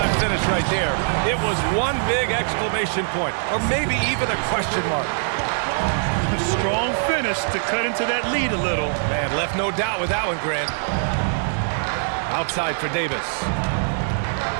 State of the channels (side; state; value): left; silent; digital silence